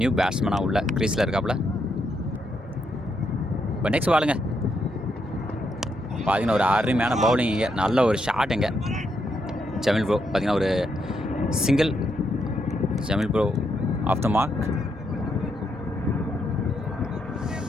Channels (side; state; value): both; normal; correlation 0.79